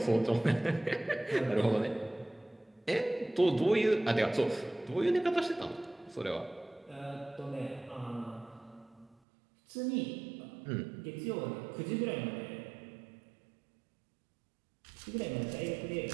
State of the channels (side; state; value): left; drops out; at 9.2 s